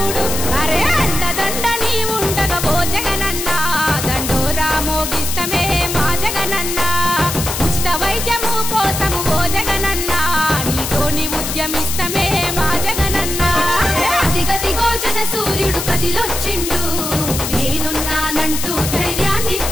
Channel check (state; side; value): noise; left; hiss, 4 dB below the sound